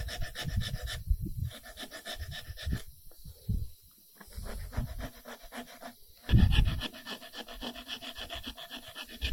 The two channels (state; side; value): identical; both; correlation 1.00